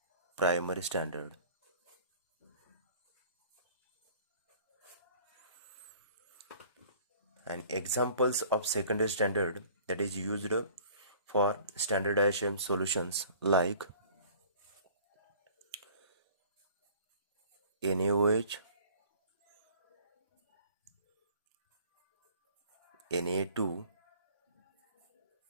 primary standard. And examples of secondary standard that is used for standardization solutions like NaOH, Na2,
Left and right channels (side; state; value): both; inverted; correlation -0.50